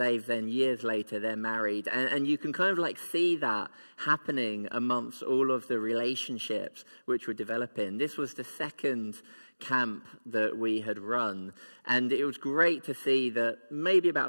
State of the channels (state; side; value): inverted; both; correlation -1.00